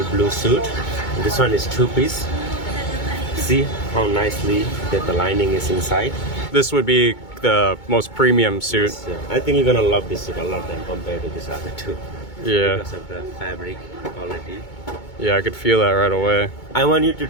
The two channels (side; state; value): right; late; 2.2 ms